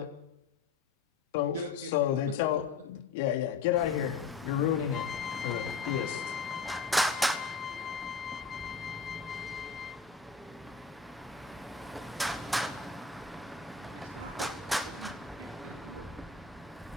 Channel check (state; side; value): quieter; right; 4.9 dB